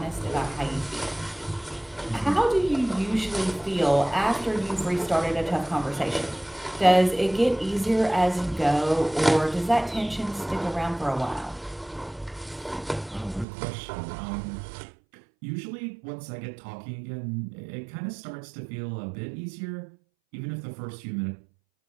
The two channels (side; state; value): left; drops out; at 13.5 s